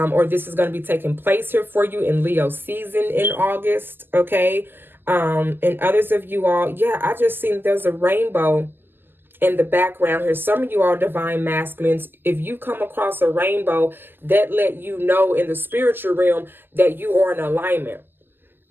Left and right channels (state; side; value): late; left; 0.095 ms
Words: this is going to be taking place here for you in Leo season in August. Okay. And others of you all, yeah, I just seen there's a rainbow in the background here. Some of you are Divine Masculines. If you come across a rainbow, that let you know in the spiritual realm that you are in alignment.